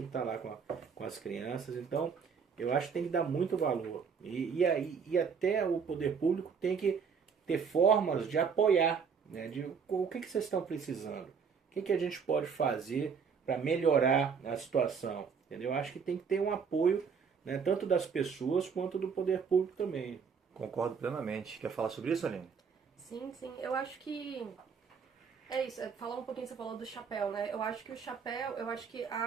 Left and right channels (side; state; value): left; quieter; 6.2 dB